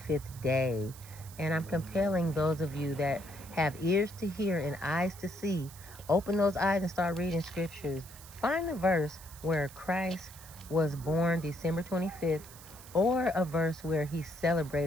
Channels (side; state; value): right; noise; hiss, 18 dB below the sound